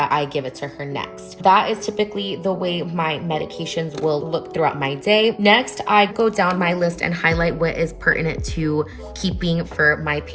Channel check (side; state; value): both; identical; correlation 1.00